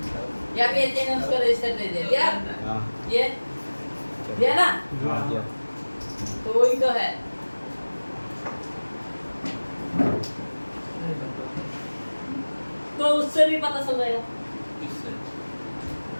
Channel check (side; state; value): both; inverted; correlation -1.00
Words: यहाँ पे ये उसको रजिस्टर दे दिया ये दिया ना, तो वही तो है। तो उससे भी पता चल जाएगा,